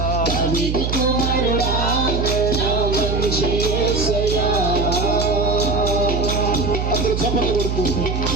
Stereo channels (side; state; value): right; noise; hum, 1 dB below the sound